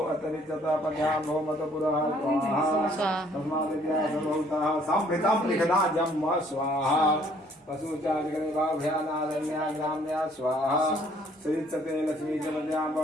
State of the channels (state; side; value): normal; both; correlation 0.61